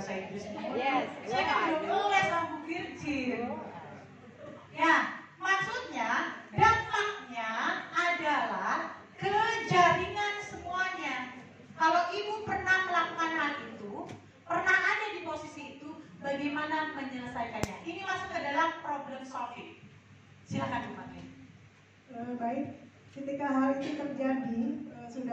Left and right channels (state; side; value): identical; both; correlation 1.00